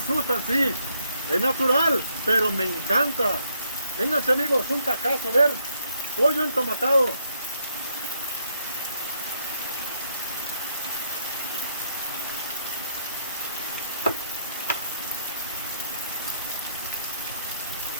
sí, es natural, pero me encanta. Vénganse, amigos, un tacazo, a ver, pollo entomatado.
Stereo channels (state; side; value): inverted; both; correlation -0.73